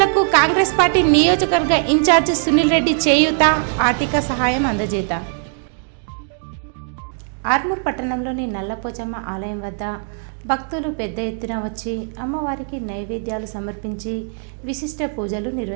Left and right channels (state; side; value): silent; left; 62 dB below the other